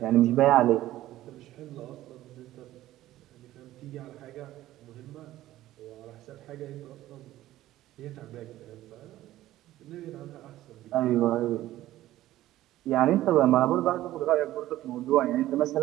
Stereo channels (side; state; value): left; quieter; 14.8 dB